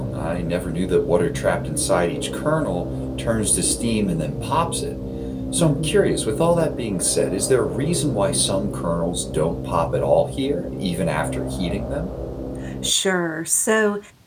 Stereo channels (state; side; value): identical; both; correlation 1.00